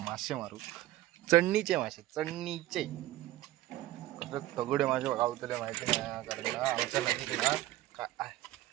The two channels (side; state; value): left; quieter; 15.8 dB